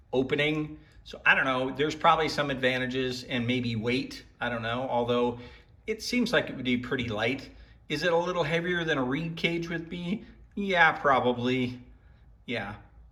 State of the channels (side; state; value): both; identical; correlation 1.00